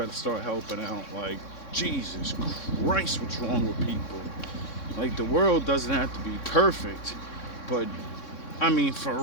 start helping out. Like, Jesus Christ, what's wrong with people? Like, the world doesn't have to be perfect, but I mean,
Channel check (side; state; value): right; late; 3.6 ms